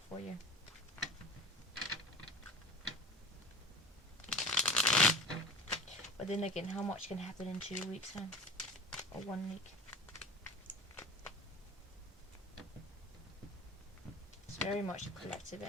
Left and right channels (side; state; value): both; normal; correlation 0.35